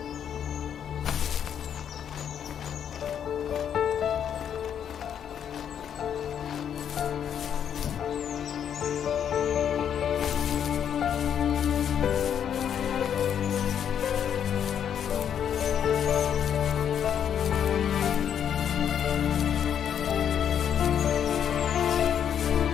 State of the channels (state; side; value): quieter; right; 8.8 dB